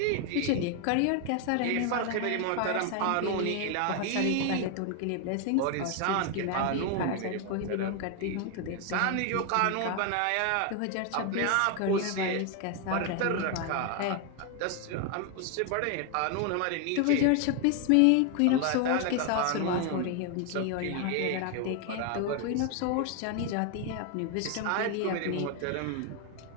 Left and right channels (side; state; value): both; different; correlation 0.01